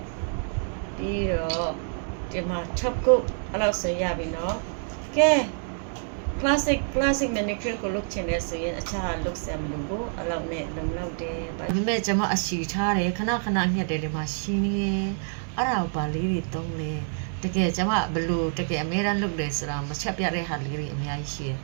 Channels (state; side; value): silent; left; 60 dB below the other